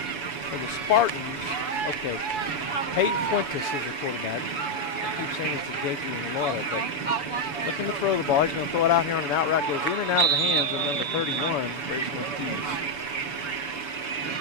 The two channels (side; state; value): right; late; 7.0 ms